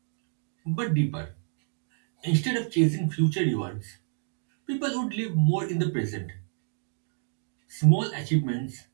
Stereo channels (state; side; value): silent; left; digital silence